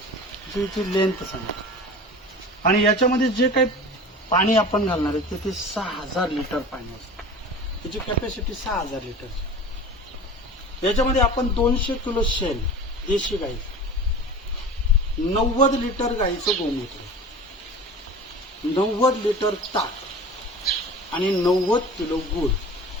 याची लेंथ सांगा. आणि याच्यामध्ये जे काही पाणी आपण घालणार आहे ते 6000 लिटर पाणी असतं. त्याची कॅपॅसिटी 6000 लिटर. याच्यामध्ये आपण 200 किलो शेण देशी गाई, 90 लिटर गाईचं गोमूत्र, 90 लिटर ताक आणि 90 किलो गूळ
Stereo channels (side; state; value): both; normal; correlation 0.37